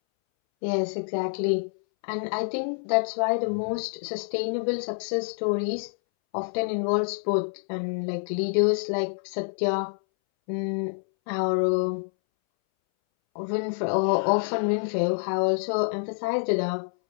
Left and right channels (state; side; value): silent; right; 60 dB below the other